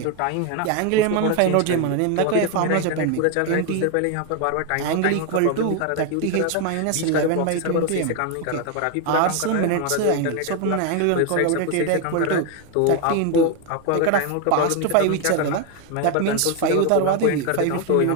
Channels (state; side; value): different; both; correlation 0.01